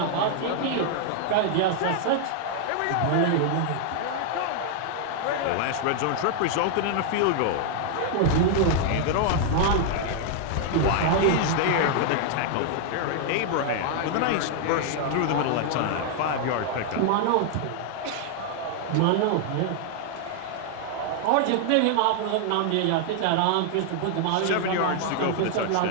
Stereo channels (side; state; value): both; different; correlation 0.00